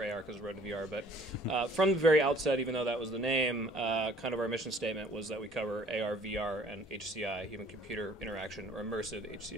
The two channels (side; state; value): both; normal; correlation 0.56